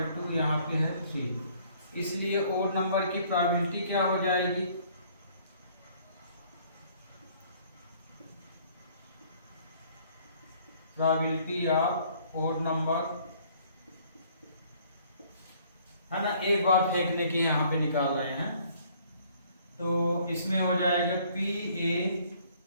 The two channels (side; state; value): both; inverted; correlation -0.59